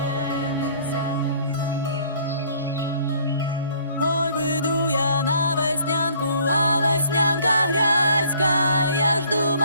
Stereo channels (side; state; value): both; inverted; correlation -0.58